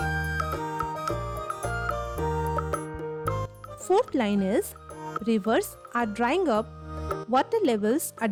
Fourth line is, rivers are drying up, water levels are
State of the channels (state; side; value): identical; both; correlation 1.00